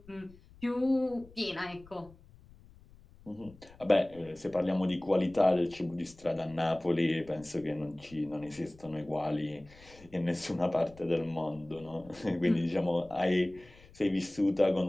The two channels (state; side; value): noise; left; rumble, 23 dB below the sound